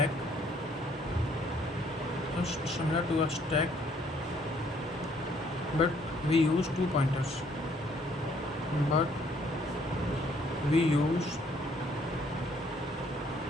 just similar to a stack, but we use two pointers. But we use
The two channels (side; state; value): both; normal; correlation 0.64